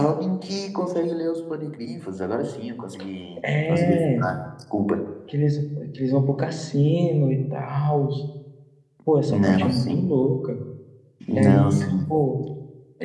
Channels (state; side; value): identical; both; correlation 1.00